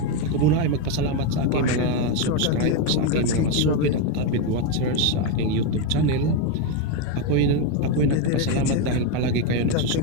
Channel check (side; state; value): both; different; correlation 0.03